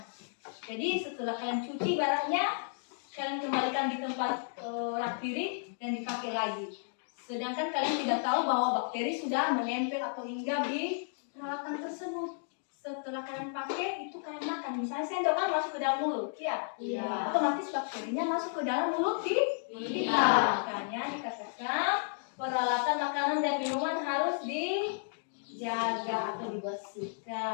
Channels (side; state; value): right; silent; digital silence